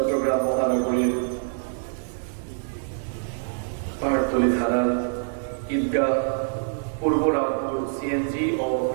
মহানগরীর পাহাড়তলী থানার ঈদগাহ পূর্ব রামপুর সিএনজি ও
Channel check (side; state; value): left; silent; digital silence